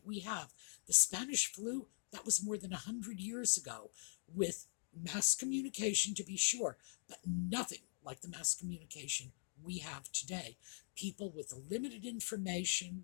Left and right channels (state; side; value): silent; right; digital silence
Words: we have? The Spanish flu, that was more than 100 years ago, with mass communication, to be sure, but nothing like the mass communication we have today. People with limited information